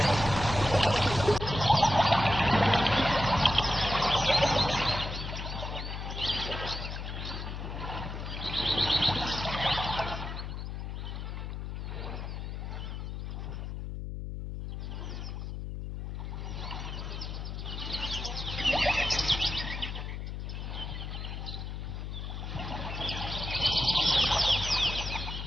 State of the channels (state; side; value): noise; left; hum, 6 dB below the sound